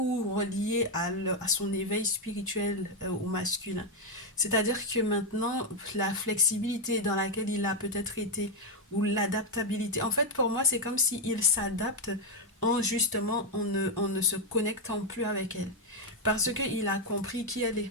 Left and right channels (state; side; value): normal; both; correlation 0.04